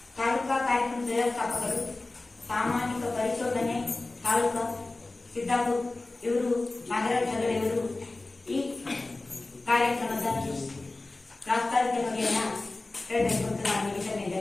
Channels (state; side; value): quieter; right; 3.1 dB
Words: ತಾಲೂಕಾ ಕಾರ್ಯಕ್ರಮ ವ್ಯವಸ್ಥಾಪಕರು, ಸಾಮಾಜಿಕ ಪರಿಶೋಧನೆ ತಾಲೂಕಾ ಸಿದ್ದಾಪುರ ಇವರು ನಾಗರಾಜ್ ಹೆಗಡೆಯವರು ಈ ಕಾರ್ಯಕ್ರಮದ ಪ್ರಾಸ್ತಾವಿಕ ಬಗೆಯನ್ನ ಹೇಳಬೇಕು ಅಂತ ನಾನು ಈ